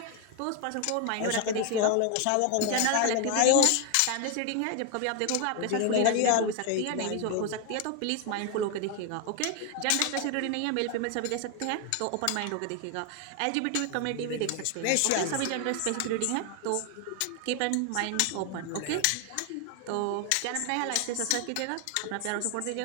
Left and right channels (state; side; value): different; both; correlation 0.01